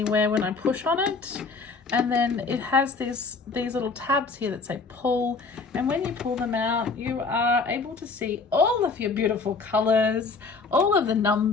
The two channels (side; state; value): right; quieter; 4.4 dB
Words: when I push on it. And then it has these little tabs here that say pull, and when you pull them out, you are able to see all of your beautiful colors, all of the